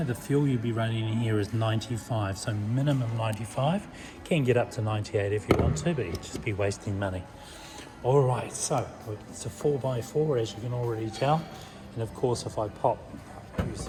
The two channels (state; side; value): identical; both; correlation 1.00